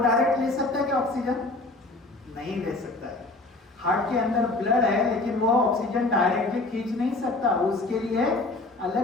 डायरेक्ट ले सकता है क्या ऑक्सीजन? नहीं ले सकता है। हार्ट के अंदर ब्लड है लेकिन वो ऑक्सीजन डायरेक्टली खींच नहीं सकता, उसके लिए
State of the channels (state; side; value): quieter; right; 3.0 dB